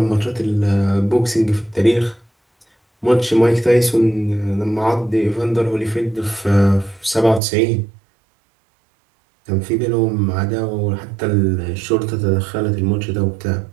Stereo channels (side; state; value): left; drops out; at 7.4 s